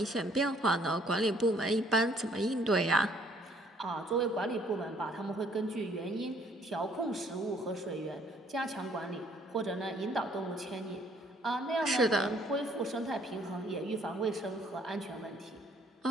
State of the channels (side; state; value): both; normal; correlation 0.62